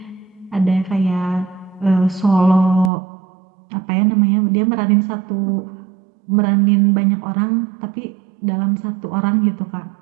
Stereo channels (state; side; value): drops out; left; at 2.9 s